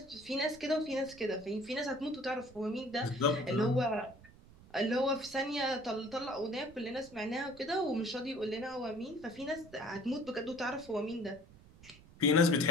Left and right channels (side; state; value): right; noise; rumble, 22 dB below the sound